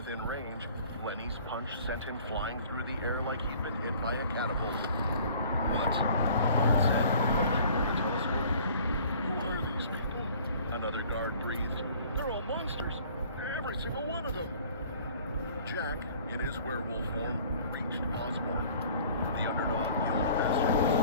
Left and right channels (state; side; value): inverted; both; correlation -0.52